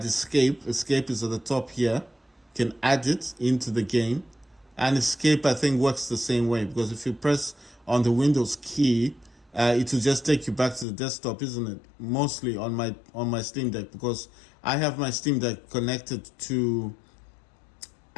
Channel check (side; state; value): right; drops out; at 10.9 s